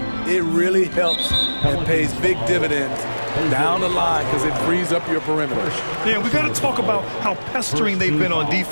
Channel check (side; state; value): both; inverted; correlation -1.00